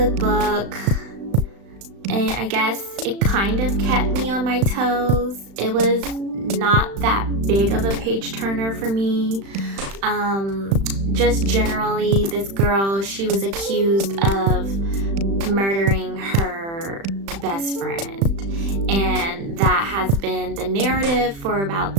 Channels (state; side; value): late; left; 36 ms